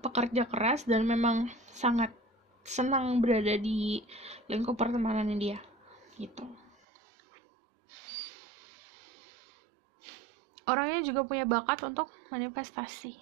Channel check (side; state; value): left; drops out; at 6.8 s